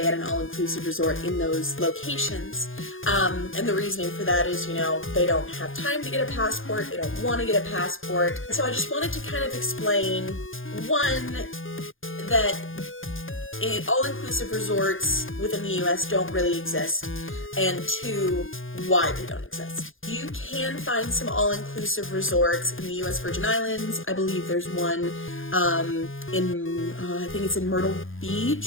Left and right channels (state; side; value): late; right; 0.59 ms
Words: at an all-inclusive resort in those locations. And the reasoning for that is, they don't have time to get a passport, they don't want to get a passport. So I just wanted to kind of explain, one, that all-inclusive resorts within the US don't really exist, and two, why they don't exist. You can find some all-inclusive resorts in the US Virgin Islands. I believe there's one I think it's in Myrtle